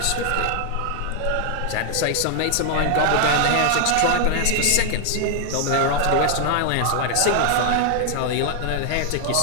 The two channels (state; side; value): different; both; correlation 0.00